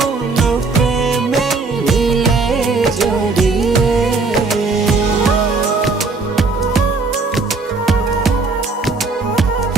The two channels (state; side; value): quieter; left; 4.0 dB